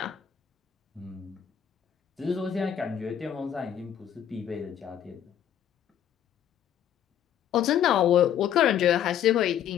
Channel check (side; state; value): right; quieter; 9.8 dB